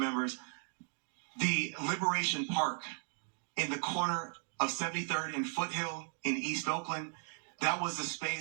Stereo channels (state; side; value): silent; left; 53 dB below the other